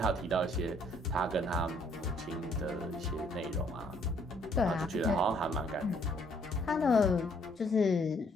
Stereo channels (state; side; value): normal; both; correlation 0.65